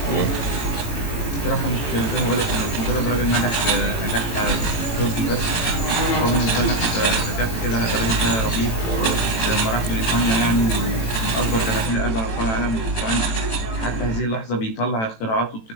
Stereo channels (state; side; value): late; right; 18 ms